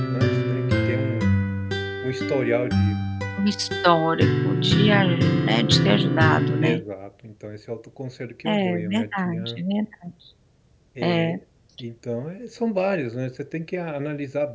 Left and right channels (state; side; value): identical; both; correlation 1.00